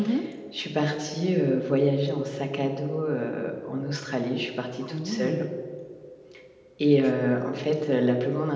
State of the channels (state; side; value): identical; both; correlation 1.00